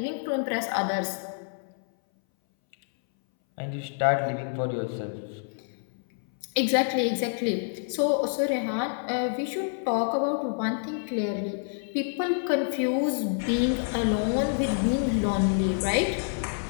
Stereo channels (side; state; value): right; silent; 60 dB below the other